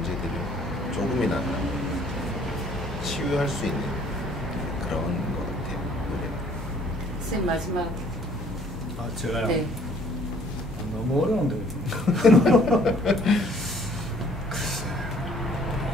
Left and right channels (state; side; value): normal; both; correlation 0.58